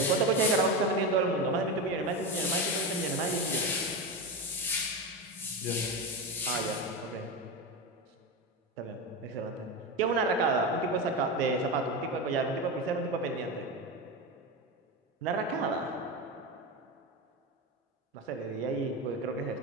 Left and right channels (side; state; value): both; normal; correlation 0.18